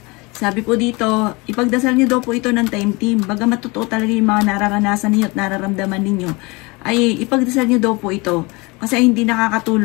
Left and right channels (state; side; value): quieter; right; 25.9 dB